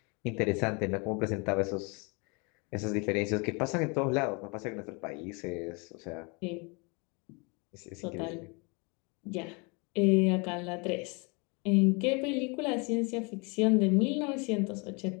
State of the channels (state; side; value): quieter; right; 31.2 dB